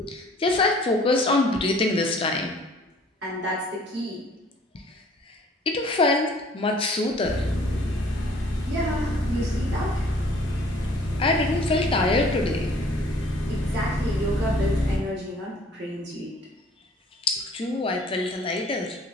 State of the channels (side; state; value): both; normal; correlation 0.55